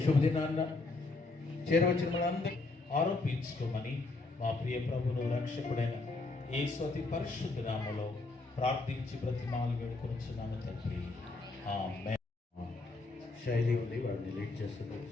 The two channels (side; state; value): right; quieter; 3.3 dB